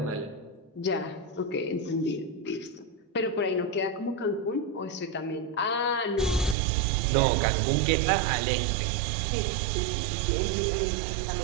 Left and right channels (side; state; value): left; drops out; at 6.6 s